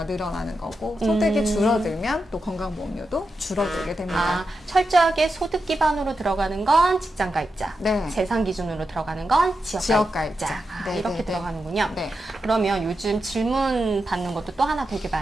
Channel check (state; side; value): normal; both; correlation 0.88